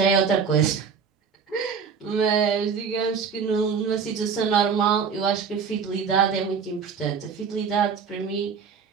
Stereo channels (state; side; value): quieter; left; 6.2 dB